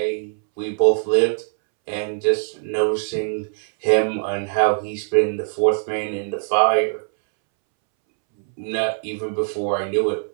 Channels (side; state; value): left; silent; 64 dB below the other